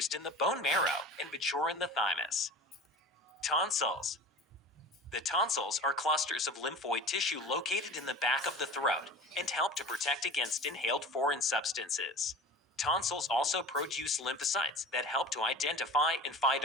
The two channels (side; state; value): both; normal; correlation 0.36